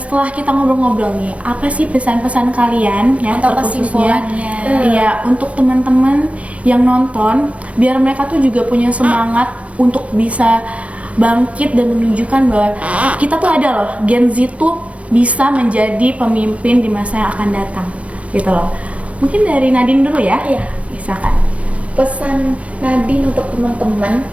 kita ngobrol-ngobrol nih, apa sih pesan-pesan kalian ya Atau terkhususnya? kesimpulannya? Iya, untuk teman-teman yang nonton, biar mereka tuh juga punya semangat untuk bisa bangkit dan menunjukkan bahwa kita tuh ada loh, Gen Z tuh bisa menjadi pemimpin di masa yang akan datang, gitu loh. Mungkin dari Nadine dulu ya. Iya. Misalkan. Pesan Nadine untuk teman-teman,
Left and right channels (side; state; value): left; late; 0.064 ms